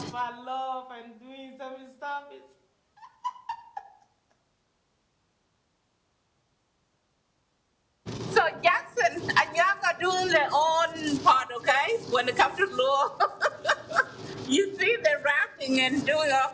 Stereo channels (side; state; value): both; identical; correlation 1.00